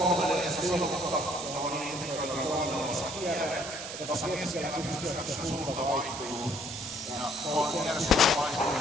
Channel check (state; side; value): noise; right; hiss, 9 dB below the sound